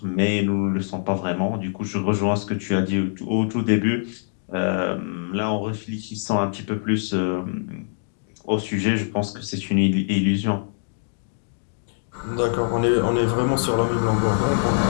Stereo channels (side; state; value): right; silent; digital silence